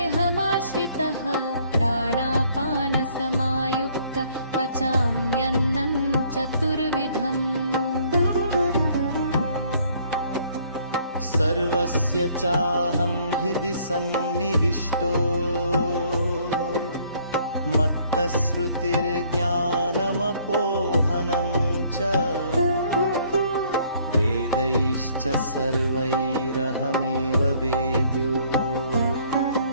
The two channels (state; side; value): inverted; both; correlation -0.62